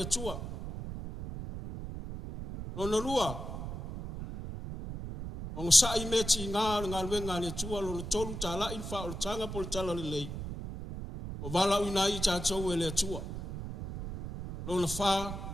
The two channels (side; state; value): right; noise; rumble, 7 dB below the sound